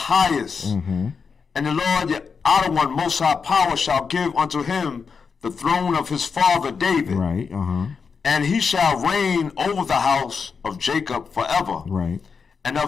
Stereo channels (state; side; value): quieter; right; 5.6 dB